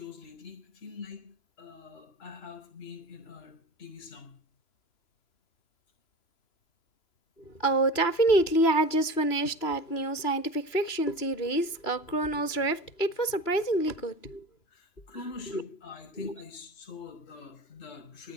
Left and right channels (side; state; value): right; late; 3.0 ms